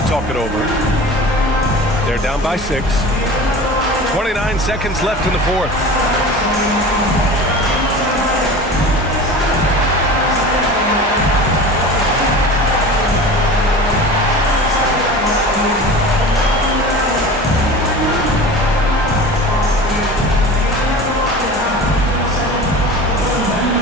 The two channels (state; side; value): normal; both; correlation 0.35